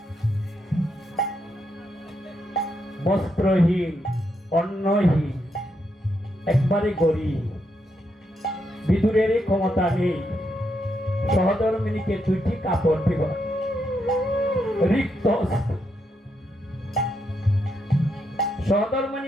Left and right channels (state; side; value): normal; both; correlation 0.80